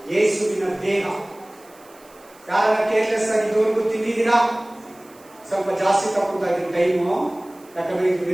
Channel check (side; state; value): right; noise; hiss, 27 dB below the sound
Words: ಯೇಸುವಿನ ದೇಹ. ಯಾರನ್ನ ಕೇರ್ಲೆಸ್ ಆಗಿ ಇದುವರೆಗೂ ತಿಂದಿದ್ದೀರಾ? ಸ್ವಲ್ಪ ಜಾಸ್ತಿ ತಗೊಂತಾ ಇದ್ದೀನಿ ಟೈಮು, ಯಾಕಂದ್ರೆ ಇದು